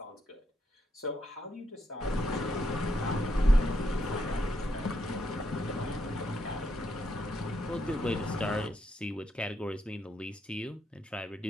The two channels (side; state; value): both; normal; correlation 0.78